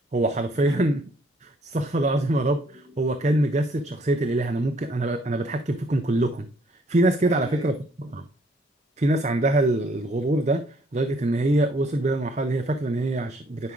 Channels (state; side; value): normal; both; correlation 0.65